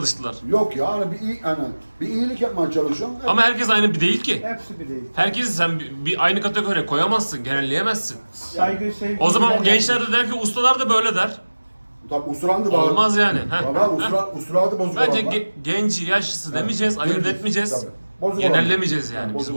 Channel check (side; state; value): both; inverted; correlation -1.00